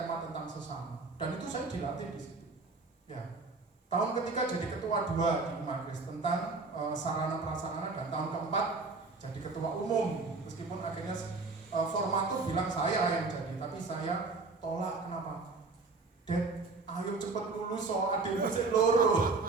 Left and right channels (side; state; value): left; quieter; 3.9 dB